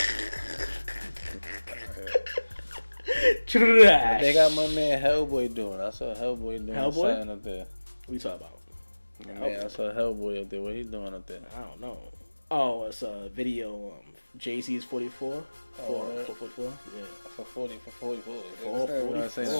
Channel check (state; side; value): inverted; both; correlation -1.00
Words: They got my man Hellboy doing. I saw Hellboy doing Hellboy? something up there. What you talking about? Man, I saw Hellboy up there. What he doing up there? I don't know. Oh, it's a video. Jay-Z's 44. Oh, 444. Yeah. For 44.